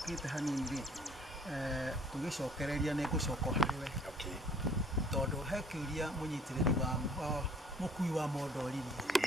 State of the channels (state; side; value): normal; both; correlation 0.56